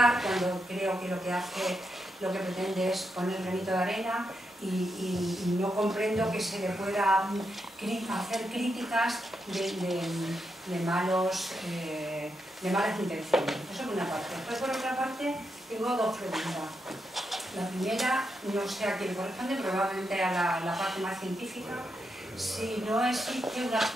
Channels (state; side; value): normal; both; correlation 0.84